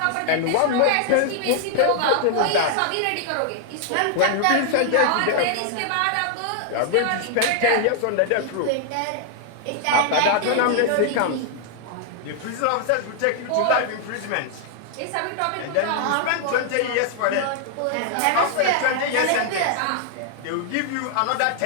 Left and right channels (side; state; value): both; different; correlation 0.00